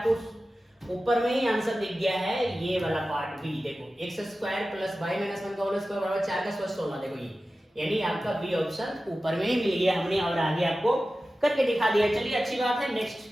ऊपर में ही आंसर दिख गया है, ये वाला पार्ट बी। देखो x square plus y minus 1 का होल स्क्वायर बराबर 4 का स्क्वायर 16। देखो ये यानी आपका बी ऑप्शन ऊपर में ही मिल गया हमने, और आगे आपको करके दिखा दिया। चलिए अच्छी बात है।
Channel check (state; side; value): normal; both; correlation 0.95